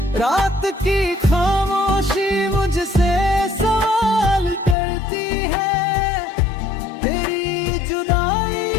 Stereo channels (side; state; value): right; drops out; at 4.8 s